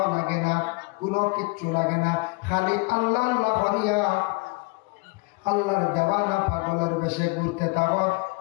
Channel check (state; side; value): quieter; right; 27.2 dB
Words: লাগে না, কোনো কিচ্ছু লাগে না, খালি আল্লাহ আল্লাহ হরিয়া আল্লাহর দেওয়ানা পাগলের বেশে ঘুরতে থাকো